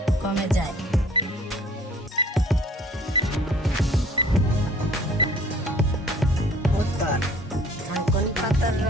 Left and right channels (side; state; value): both; normal; correlation 0.53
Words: কমে যায়? উত্তর, থানকুনি পাতার